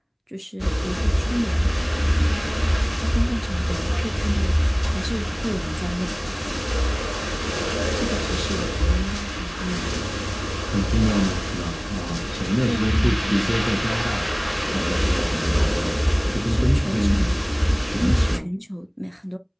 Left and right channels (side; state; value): both; identical; correlation 1.00